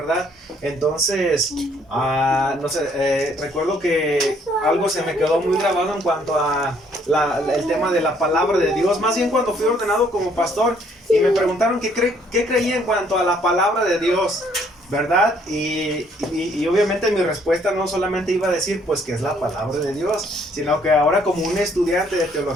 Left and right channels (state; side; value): normal; both; correlation 0.65